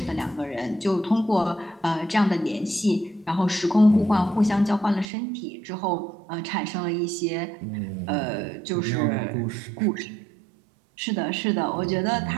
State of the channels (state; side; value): drops out; left; at 5.1 s